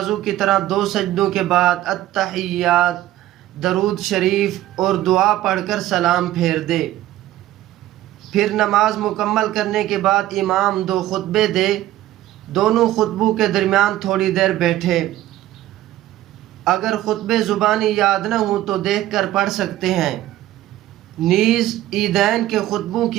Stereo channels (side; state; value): left; quieter; 14.4 dB